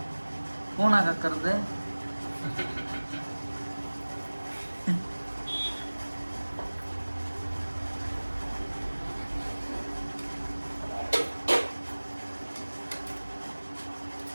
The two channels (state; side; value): inverted; both; correlation -1.00